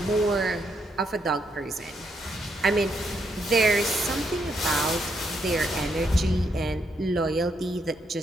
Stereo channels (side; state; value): both; normal; correlation 0.77